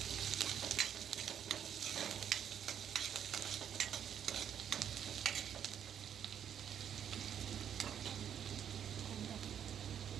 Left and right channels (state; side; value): quieter; left; 9.0 dB